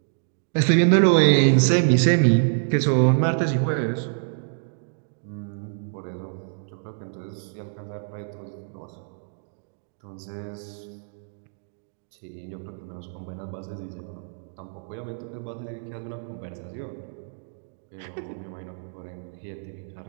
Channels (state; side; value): silent; left; digital silence